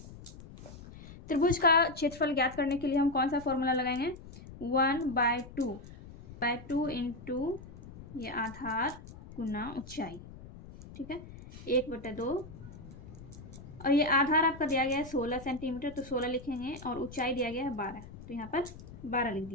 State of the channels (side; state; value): left; noise; rumble, 16 dB below the sound